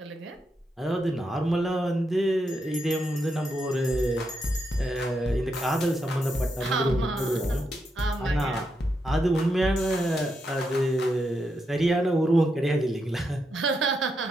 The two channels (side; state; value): both; normal; correlation 0.83